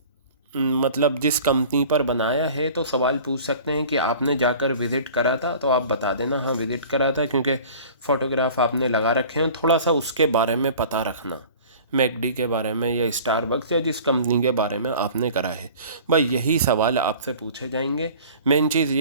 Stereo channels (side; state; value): both; inverted; correlation -0.44